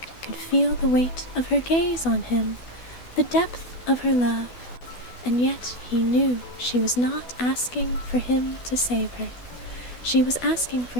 could feel the weight of her gaze on him, the depth of her love, and yet he knew she was not asking for him to save her. She was asking for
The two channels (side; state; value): right; late; 12 ms